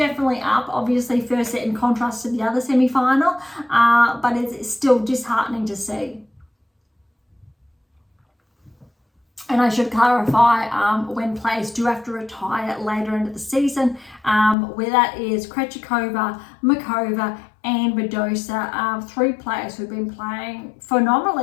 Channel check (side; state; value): right; drops out; at 14.6 s